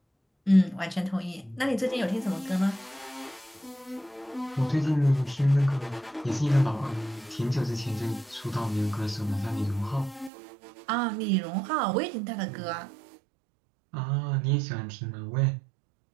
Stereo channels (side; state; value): left; drops out; at 10.3 s